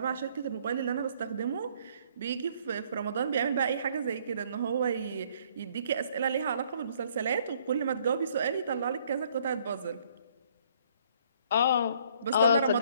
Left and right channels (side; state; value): both; inverted; correlation -0.63